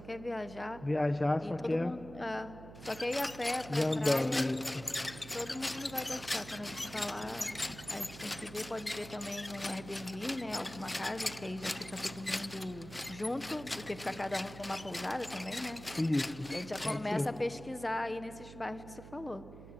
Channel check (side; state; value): right; noise; hum, 14 dB below the sound